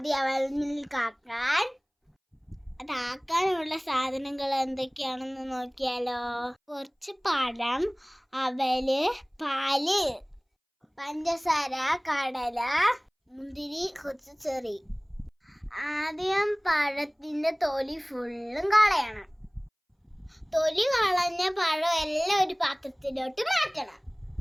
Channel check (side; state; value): both; identical; correlation 1.00